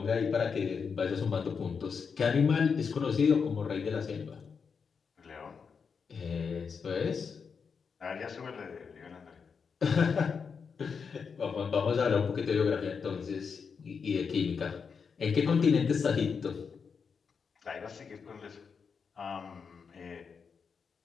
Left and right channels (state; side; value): quieter; right; 5.9 dB